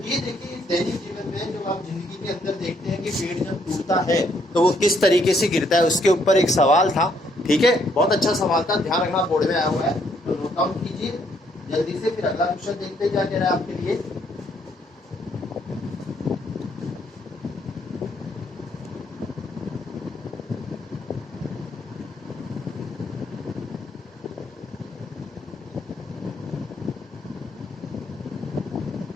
ये देखिए दैनिक जीवन में जब आप जिंदगी के अंदर देखते हैं कि पेड़ जब टूटता है तो वो किस तरीके से गिरता है, उसके ऊपर एक सवाल था। ठीक है, बहुत अच्छा सवाल था, ध्यान रखना, बोर्ड में आया हुआ है, तो नोट डाउन कीजिए जल्दी से। फिर अगला क्वेश्चन देखते हैं क्या कह रहा है आपके लिए।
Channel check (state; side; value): normal; both; correlation 0.70